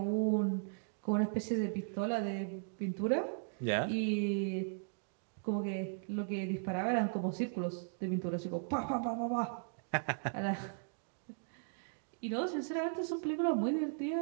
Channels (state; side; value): silent; left; digital silence